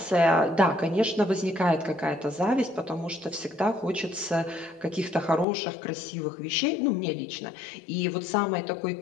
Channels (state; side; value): drops out; right; at 5.5 s